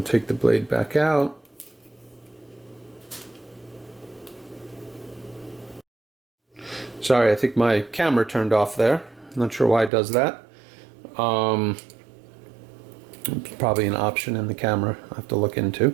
take the blade back out. Sorry, I think my camera turned off there. Not sure why it does that. Probably an option in the camera I have to look into.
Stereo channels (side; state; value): left; drops out; at 9.9 s